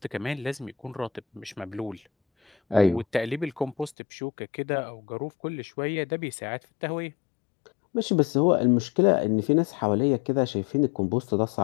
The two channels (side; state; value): right; drops out; at 4.0 s